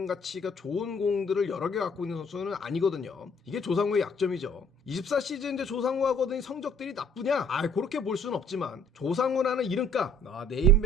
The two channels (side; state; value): both; normal; correlation 0.59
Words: 가치가 좋은 공들을 여러 개 갖고 있는 선수는 아니거든요. 이게 조상우의 약점이죠. 24 시즌 이제 조상우가 거둔 성적들이 나쁘냐? 그렇게 볼 수는 없지만 조상우라는 이름값,